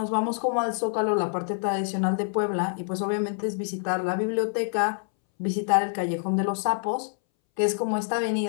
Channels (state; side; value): silent; right; 61 dB below the other